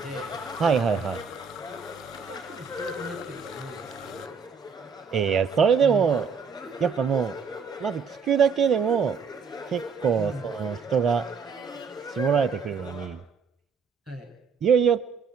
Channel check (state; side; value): quieter; left; 5.7 dB